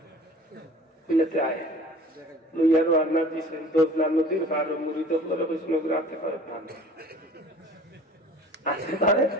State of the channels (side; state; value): both; normal; correlation 0.45